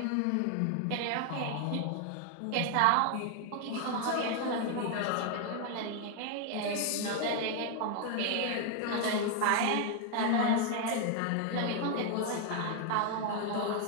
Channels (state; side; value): different; both; correlation 0.00